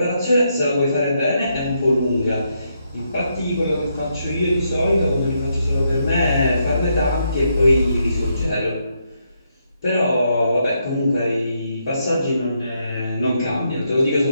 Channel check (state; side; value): inverted; both; correlation -0.78